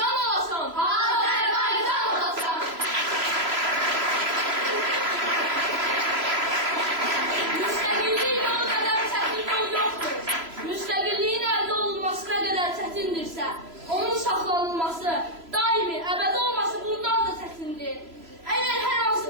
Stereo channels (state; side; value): late; left; 3.0 ms